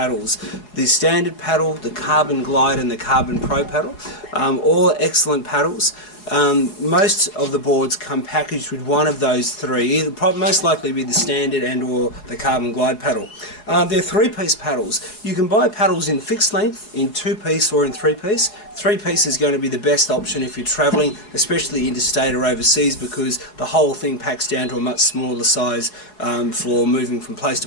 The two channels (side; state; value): right; late; 4.7 ms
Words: The standard paddle, the Carbon Glide and the Carbon Pro paddle. All excellent paddles. Most of the boards come packaged with one of those three, either most likely be the standard and or the Carbon Glide paddle. They're three-piece paddles. You can buy paddles in fixed length, in two-piece or in three-piece. Three-piece is going to be the best option if you're travelling, especially interstate or overseas, because the whole thing packs down to a much smaller size for moving from place